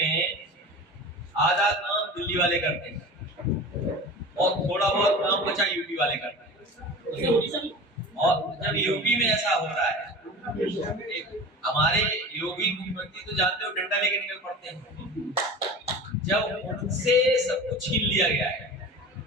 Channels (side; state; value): both; normal; correlation 0.34